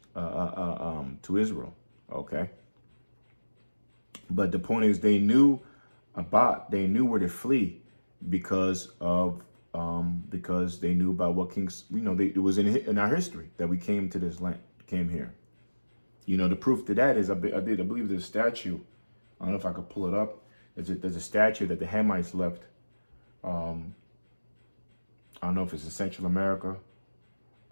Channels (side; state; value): both; inverted; correlation -1.00